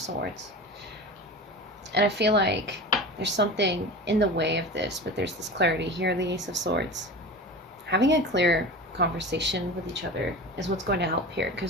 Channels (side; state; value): both; normal; correlation 0.32